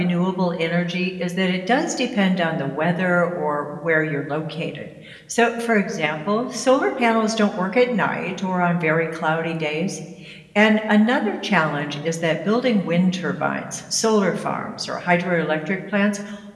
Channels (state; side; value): identical; both; correlation 1.00